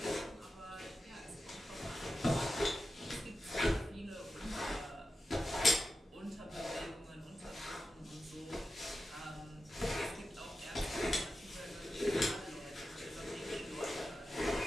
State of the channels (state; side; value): normal; both; correlation 0.91